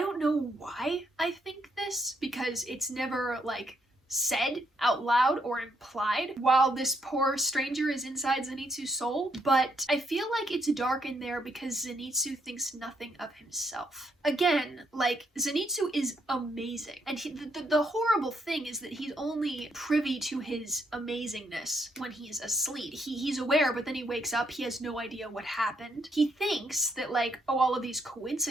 know why I think this, because it's never, like, said out loud or implied while this poor stranger is inside Zenitsu's soul, but I feel like it's dark in there because Zenitsu thinks nothing of himself. Again, like, Zenitsu is amazing, and the horrible thing is that he's only privy to his amazingness when he's asleep. He's aware, but then he wakes up, he has no idea what happened. He thinks that, like, oh, all of these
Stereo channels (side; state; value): both; normal; correlation 0.75